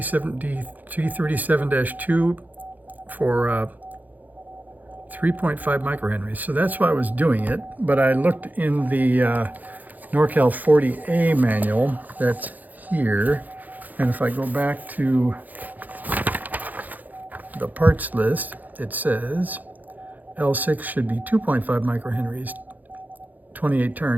for 3.5 microhenries. So that's why I was doing it. But I looked in the NorCal 40A manual that's here. And if I go back to the parts list, it says L6 should be 2.5 microhenries, 28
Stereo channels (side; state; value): left; late; 0.082 ms